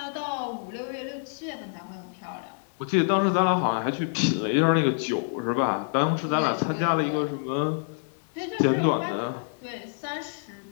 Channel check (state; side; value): silent; right; digital silence